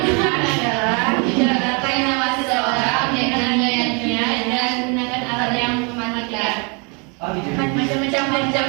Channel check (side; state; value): left; quieter; 33.6 dB